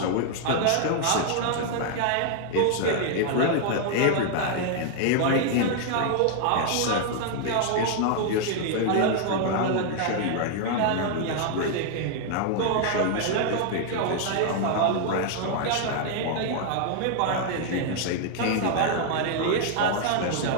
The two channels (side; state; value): both; different; correlation 0.00